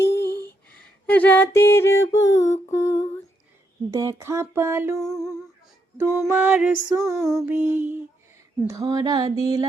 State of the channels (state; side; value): normal; both; correlation 0.78